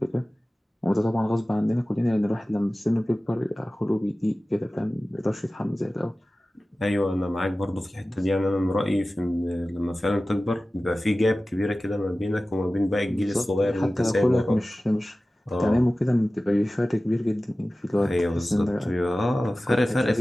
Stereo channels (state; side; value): normal; both; correlation 0.96